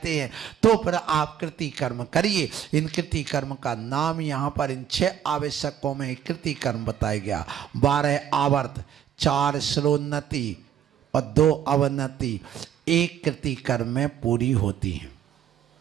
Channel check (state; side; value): quieter; left; 9.8 dB